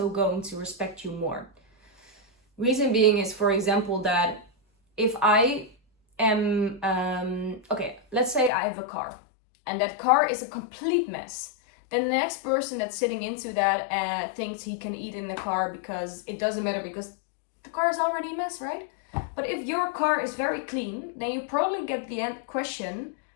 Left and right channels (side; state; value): right; drops out; at 8.5 s